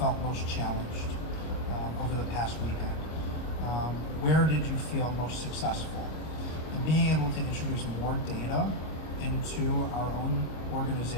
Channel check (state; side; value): late; right; 25 ms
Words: most challenged over the past weekend. Where did you feel most successful? And being able to introduce more data into our own